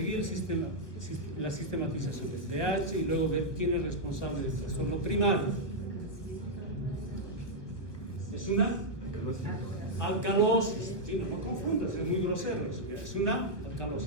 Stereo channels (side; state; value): right; late; 1.4 ms